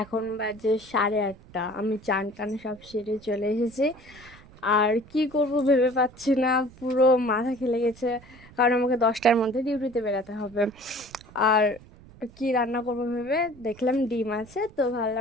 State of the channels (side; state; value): right; noise; rumble, 22 dB below the sound